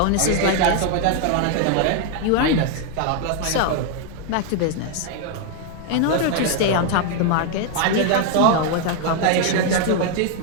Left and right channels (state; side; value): different; both; correlation 0.00